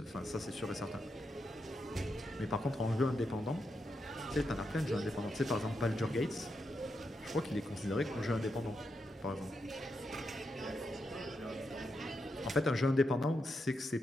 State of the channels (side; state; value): both; normal; correlation 0.84